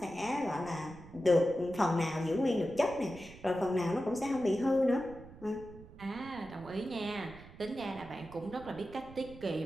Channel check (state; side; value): noise; right; rumble, 18 dB below the sound